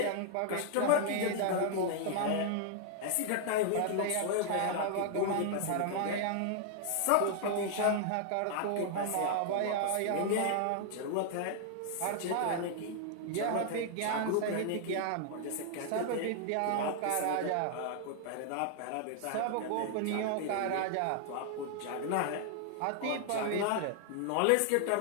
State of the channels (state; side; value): different; both; correlation -0.01